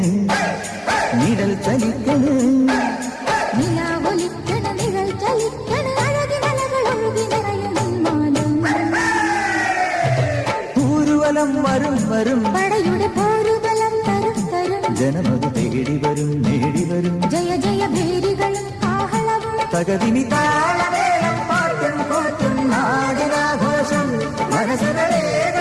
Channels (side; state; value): both; identical; correlation 1.00